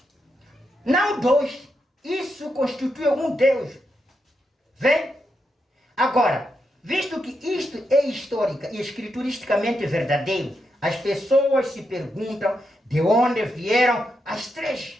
Não dois. Isso constitui um Deus. Vem? Agora, visto que isto é histórica e escrituristicamente verdadeiro, as pessoas se perguntam de onde vieram as três.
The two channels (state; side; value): normal; both; correlation 0.84